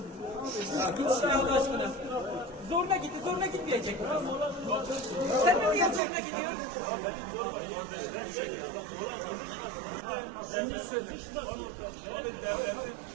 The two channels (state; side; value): drops out; left; at 6.0 s